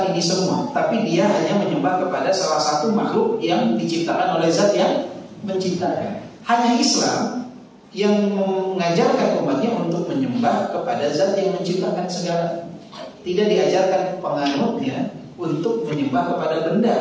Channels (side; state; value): both; identical; correlation 1.00